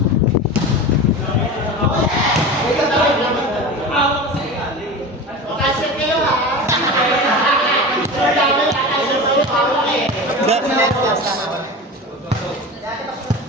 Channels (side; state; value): both; normal; correlation 0.30